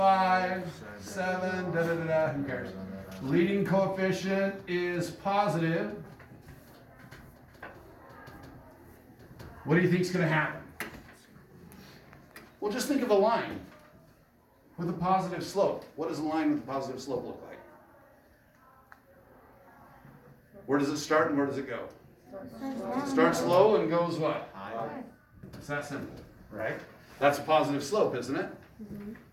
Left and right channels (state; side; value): identical; both; correlation 1.00